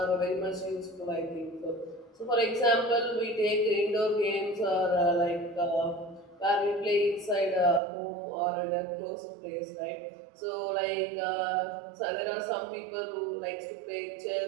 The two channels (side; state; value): left; drops out; at 7.8 s